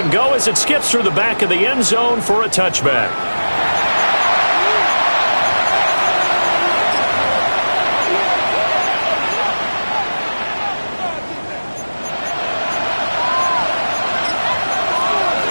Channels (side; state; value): both; inverted; correlation -1.00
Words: go as it skips through the back of the end zone for a touchback.